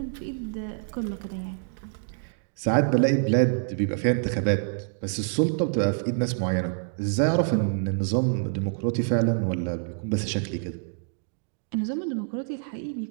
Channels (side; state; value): left; silent; digital silence